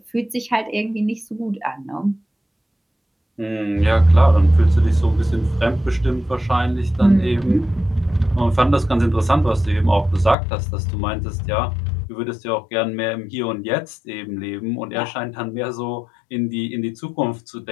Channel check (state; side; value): drops out; right; at 10.4 s